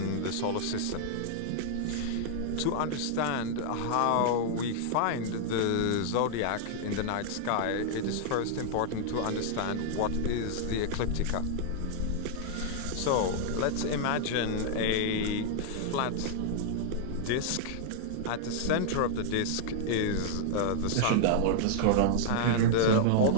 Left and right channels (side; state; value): both; different; correlation -0.01